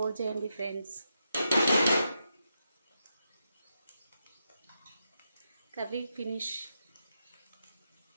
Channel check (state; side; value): inverted; both; correlation -0.85